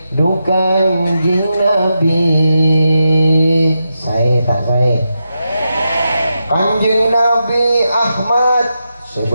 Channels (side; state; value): both; inverted; correlation -0.87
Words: Kanjeng Nabi saya tak saya Kanjeng Nabi Ahmad